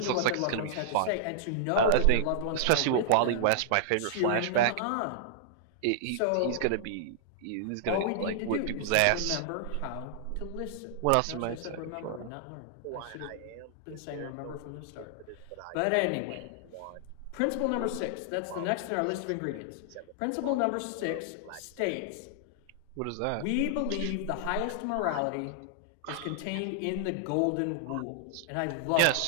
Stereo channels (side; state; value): both; different; correlation -0.01